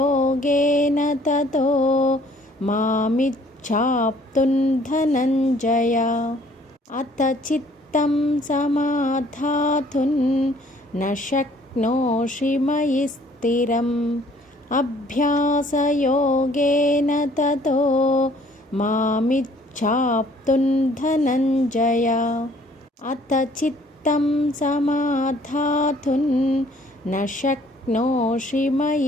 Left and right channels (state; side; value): normal; both; correlation 0.59